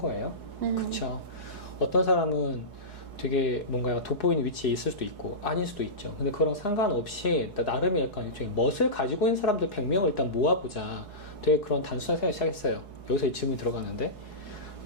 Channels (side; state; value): right; late; 4.7 ms